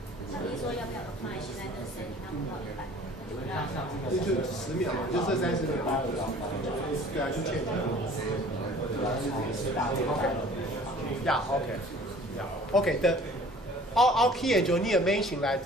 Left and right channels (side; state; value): both; normal; correlation 0.49